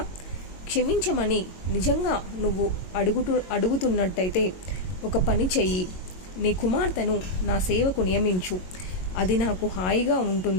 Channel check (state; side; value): late; right; 22 ms